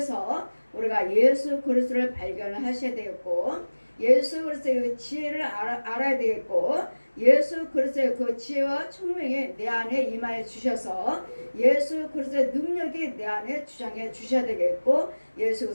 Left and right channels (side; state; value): both; inverted; correlation -1.00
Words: 우리가 예수 그리스도를 발견을 하셔야 되겠고 예수 그리스도의 그 지혜를 알아야 되겠고 예수 그리스도의 그 지혜와 총명이 내 안에 임하여 주셔서 예수 그리스도의 능력이 내 안에 주장해 주셔야 되겠고 예수